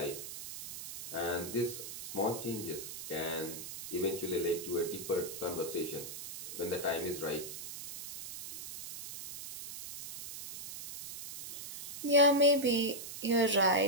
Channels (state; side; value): noise; right; hiss, 10 dB below the sound